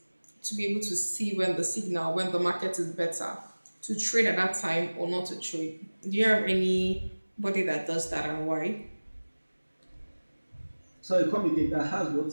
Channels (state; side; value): inverted; both; correlation -1.00